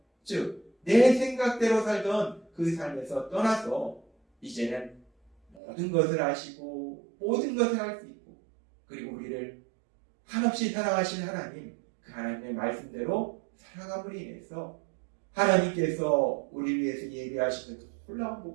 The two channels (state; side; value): drops out; left; at 5.6 s